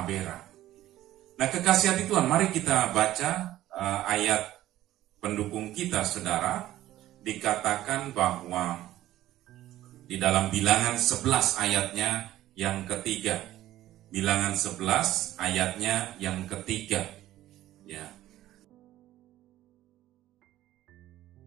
Nah, kekasih hati Tuhan, mari kita baca ayat pendukung kita, saudara. Dikatakan bahwa di dalam Bilangan 11 ayatnya yang ketiga. Bilangan 11 ayatnya yang ketiga. Ya.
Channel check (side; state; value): left; quieter; 14.3 dB